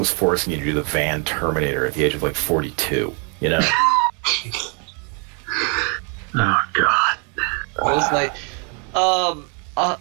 forcing you to do the Van Terminator at the age of like 42. You know. Oh God. It was like,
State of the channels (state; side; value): quieter; left; 36.7 dB